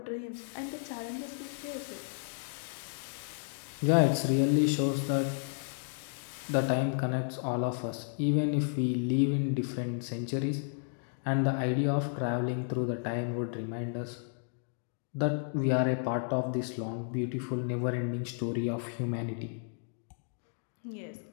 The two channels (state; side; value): silent; right; digital silence